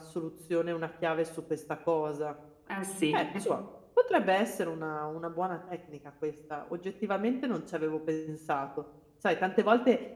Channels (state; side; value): identical; both; correlation 1.00